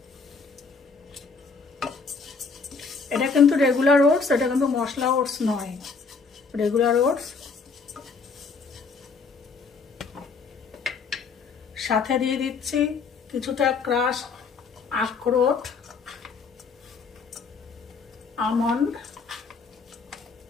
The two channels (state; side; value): quieter; right; 4.8 dB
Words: এটা কিন্তু রেগুলার ওটস, এটা কিন্তু মশলা ওটস নয়, রেগুলার ওটস। সাথে দিয়ে দিচ্ছি কিছুটা ক্রাশ আখরোট, আমন্ড